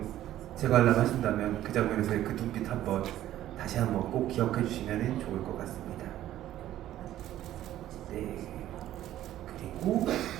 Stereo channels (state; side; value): quieter; left; 13.1 dB